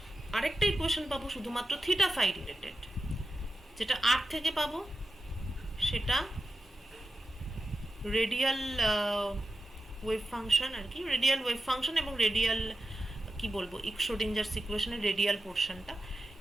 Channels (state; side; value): normal; both; correlation 0.90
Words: আরেকটা ইকুয়েশন পাবো শুধুমাত্র থিটা ফাই রিলেটেড। যেটা আর থেকে পাবো সেটা রেডিয়াল ওয়েভ ফাংশন আর কি, রেডিয়াল ওয়েভ ফাংশন এবং রেডিয়াল কি বলবো শ্রোডিঞ্জারস ইকুয়েশনের রেডিয়াল পোর্শনটা।